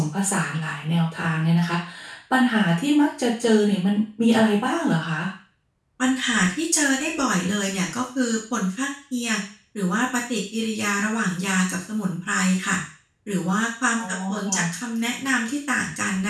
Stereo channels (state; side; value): identical; both; correlation 1.00